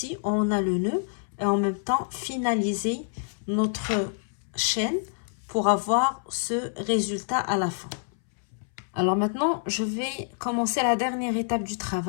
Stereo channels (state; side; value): silent; right; 60 dB below the other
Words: où on a le nœud et en même temps finaliser notre chaîne pour avoir ce résultat à la fin. Alors maintenant, je vais commencer la dernière étape du